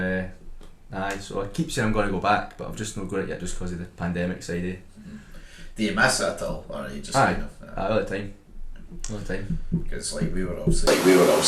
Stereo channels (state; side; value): identical; both; correlation 1.00